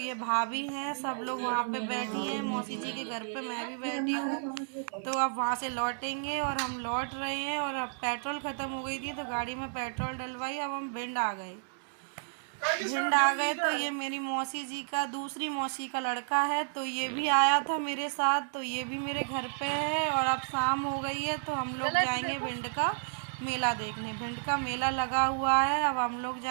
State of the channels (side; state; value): left; silent; digital silence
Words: भाभी हैं, सब लोग वहाँ पे बैठी हैं मौसी जी के घर पे, मैं भी बैठी हूँ। तो अब वहाँ से लौटेंगे और हम लौट रहे हैं। और अब पेट्रोल ख़त्म हो गई थी तो गाड़ी में पेट्रोल डलवाई। अब हम भिंड आ गए। तो ये मेरी मौसी जी का, दूसरी मौसी का लड़का है, तो ये भी आया था मेरे साथ। तो ये भी मेरे घर पे है। और अब शाम हो गई है तो हम लोग जाएंगे भिंड का मेला देखने। भिंड का मेला लगा हुआ है, अब हम लोग